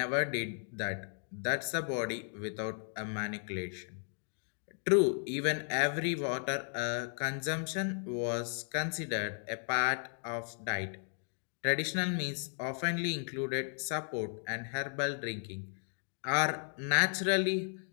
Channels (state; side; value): silent; right; 54 dB below the other